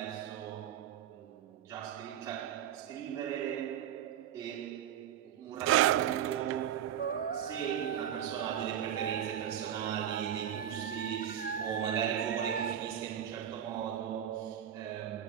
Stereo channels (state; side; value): quieter; left; 10.0 dB